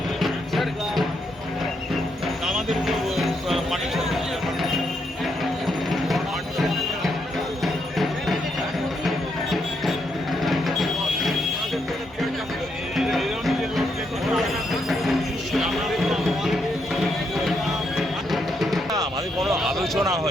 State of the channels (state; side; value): normal; both; correlation 0.78